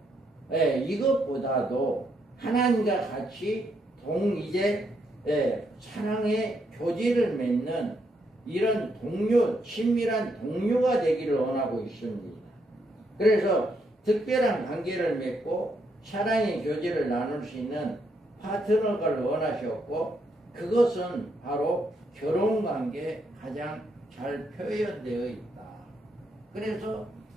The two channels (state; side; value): normal; both; correlation 0.77